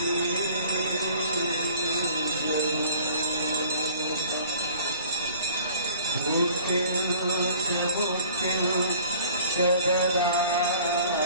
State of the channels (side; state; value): both; inverted; correlation -0.51